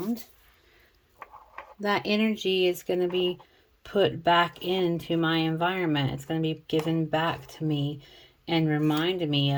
that energy is going to be put back into my environment. It's going to be given back to me and remind me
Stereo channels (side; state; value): both; identical; correlation 1.00